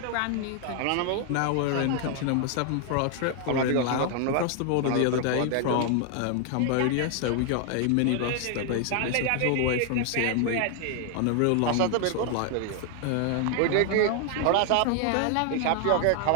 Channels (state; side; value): different; both; correlation 0.00